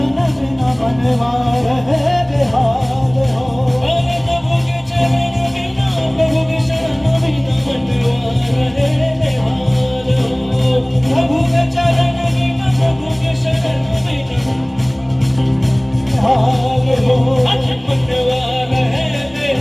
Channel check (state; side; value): noise; right; rumble, 30 dB below the sound